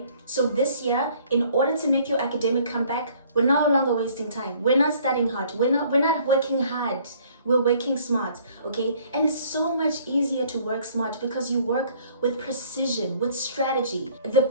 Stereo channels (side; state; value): both; inverted; correlation -0.58